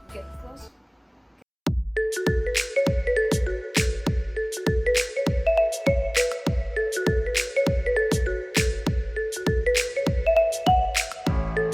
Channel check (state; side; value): identical; both; correlation 1.00